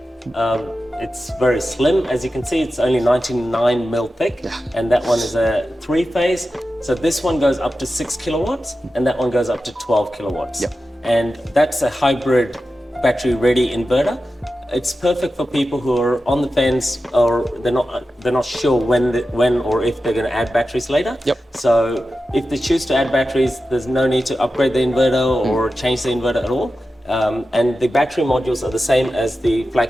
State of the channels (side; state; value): both; normal; correlation 0.92